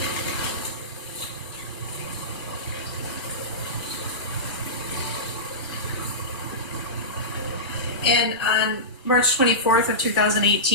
And on March 24th of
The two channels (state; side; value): normal; both; correlation -0.17